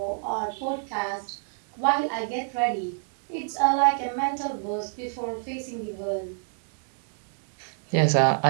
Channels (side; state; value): left; silent; 60 dB below the other